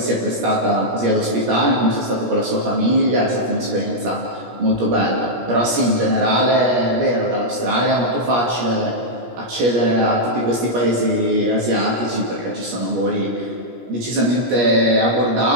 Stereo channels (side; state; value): left; late; 17 ms